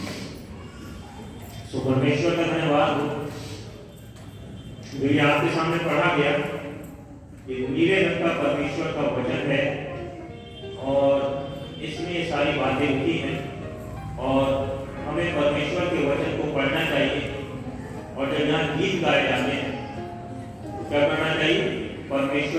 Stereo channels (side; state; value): both; identical; correlation 1.00